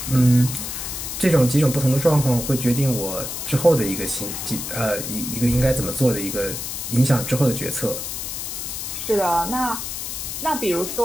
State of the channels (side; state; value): left; noise; hiss, 6 dB below the sound